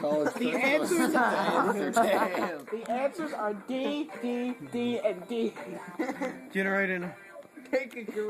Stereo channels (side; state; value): both; identical; correlation 1.00